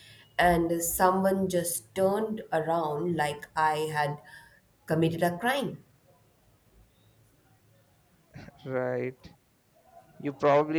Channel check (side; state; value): both; identical; correlation 1.00